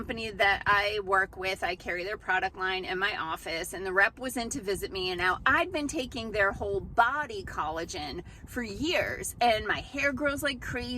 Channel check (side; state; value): both; identical; correlation 1.00